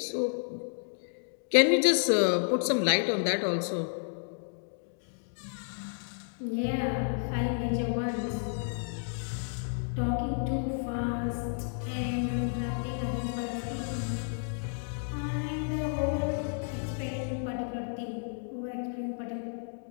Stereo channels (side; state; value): right; silent; digital silence